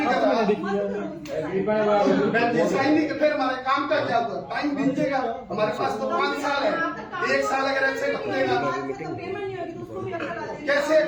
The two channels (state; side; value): identical; both; correlation 1.00